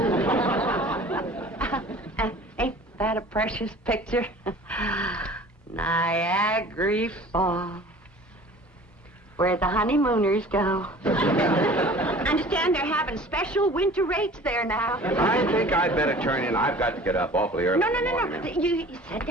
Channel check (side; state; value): both; normal; correlation 0.45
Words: Ain't that a precious picture? Niagara Falls, where the honeymooners go. Understand they're having special winter rates there now. I think I'd better turn in. I've got to get up awfully early. No. You sit